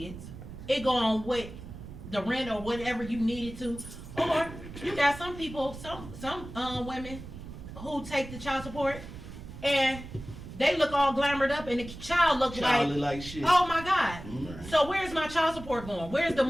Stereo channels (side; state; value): right; noise; rumble, 13 dB below the sound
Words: It go on with the rent or whatever you needed to. Or you got some people, some women who take the child support, and they look all glamored up, and the child look like shit. Oh my God. So where's my child support going? Where's the